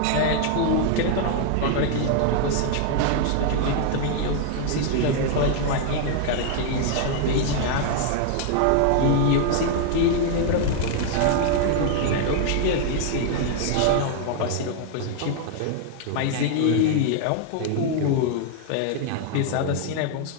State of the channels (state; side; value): different; both; correlation 0.00